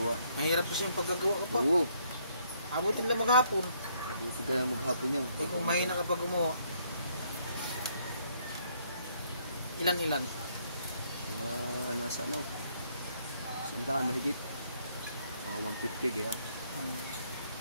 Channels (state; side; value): inverted; both; correlation -0.69